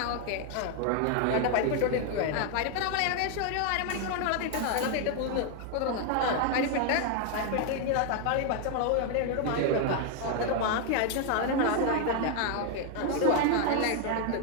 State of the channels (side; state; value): both; different; correlation 0.00